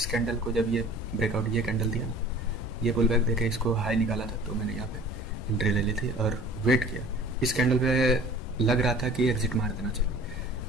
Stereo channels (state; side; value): normal; both; correlation 0.47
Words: कैंडल को जब ये ब्रेकआउट ये कैंडल दिया ना, ये पुल बैक देखे इसको हाई निकाला था, तो मैंने यहाँ पे एंट्री ले ली थी और वेट किया, इस कैंडल पे लग रहा था कि एग्जिट मार देना चाहिए,